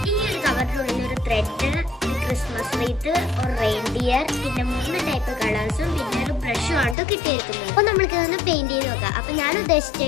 ഈ ഒരു കവറിനുള്ളിൽ ഒരു ത്രെഡ്, ക്രിസ്മസ് റീത്ത്, ഒരു റെയിൻഡിയർ, പിന്നെ 3 ടൈപ്പ് കളേഴ്സും പിന്നെ ഒരു ബ്രഷും ആണ് കിട്ടിയിരിക്കുന്നത്. അപ്പൊ നമ്മൾക്ക് ഇതൊന്ന് പെയിന്റ് ചെയ്ത് നോക്കാം. അപ്പൊ ഞാൻ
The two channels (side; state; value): right; drops out; at 7.0 s